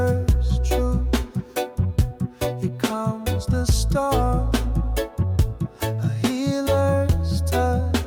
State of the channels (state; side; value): identical; both; correlation 1.00